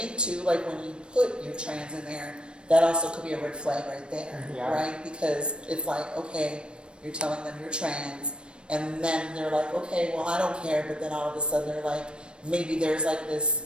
too, like when you put your trans in there, that also could be a red flag right there, Yeah. right? Because it's like, okay, you're telling them you're trans, and then they're like, okay, well, I don't care, but then all of a sudden they're like, maybe there's like this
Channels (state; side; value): late; left; 0.055 ms